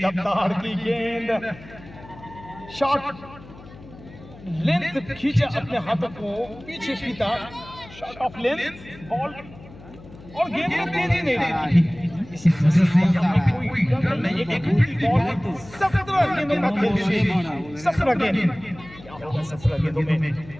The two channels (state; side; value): noise; left; hum, 19 dB below the sound